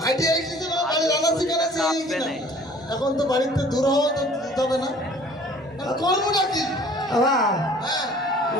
হাইটে এসেছে বাড়ি রান্না শিখাচ্ছে এখন তো বাড়িতে দূর হওয়া তো দিতে হবে না কর্মটা কি আবা হ্যাঁ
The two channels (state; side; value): normal; both; correlation 0.51